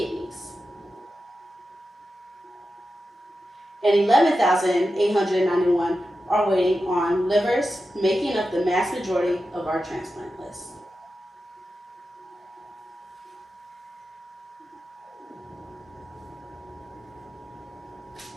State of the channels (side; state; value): both; normal; correlation 0.91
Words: And 11,891 are waiting on livers, making up the mass majority of our transplant list.